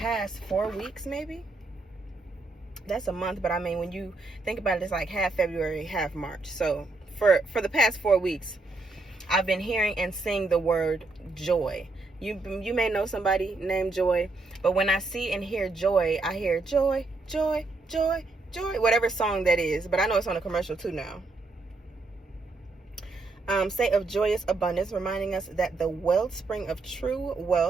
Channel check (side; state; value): left; quieter; 3.4 dB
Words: 4 weeks maybe. That's a month, but I mean, when you think about it, it's like half February, half March. So for the past 4 weeks, I've been hearing and seeing the word joy. You may know somebody named Joy, but when I see and hear joy, I hear joy, joy, joy, joy, whatever song that is. But I know it's on a commercial too now. State of joyous abundance, reminding us that the wellspring of true